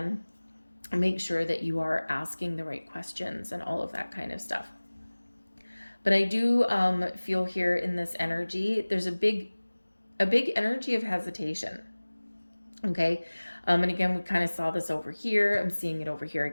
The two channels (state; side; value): inverted; both; correlation -1.00